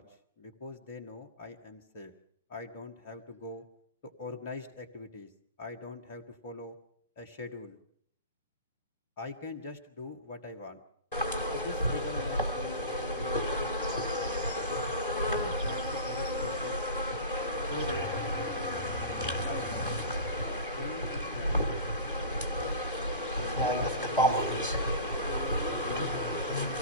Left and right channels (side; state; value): both; inverted; correlation -0.33